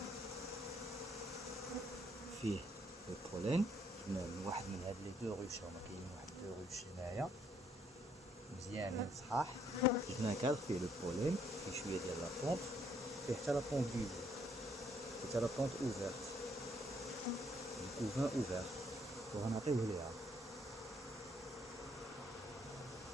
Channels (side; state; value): both; normal; correlation 0.69